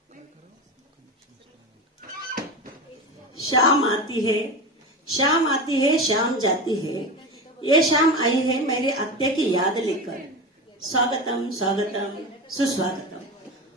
शाम आती है शाम जाती है, ये शाम आई है मेरी आत्या की याद लेकर। स्वागतम स्वागतम सुस्वागतम।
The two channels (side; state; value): both; normal; correlation 0.24